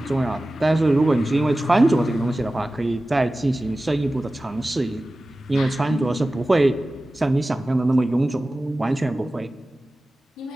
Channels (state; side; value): normal; both; correlation 0.96